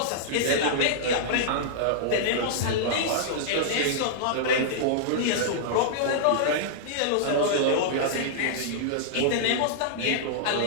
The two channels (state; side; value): different; both; correlation -0.02